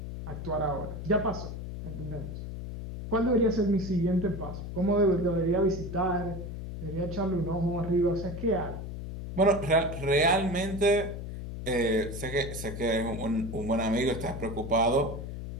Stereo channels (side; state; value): left; noise; hum, 7 dB below the sound